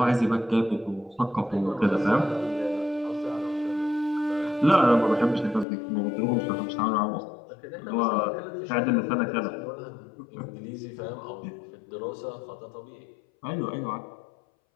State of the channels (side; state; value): right; drops out; at 5.7 s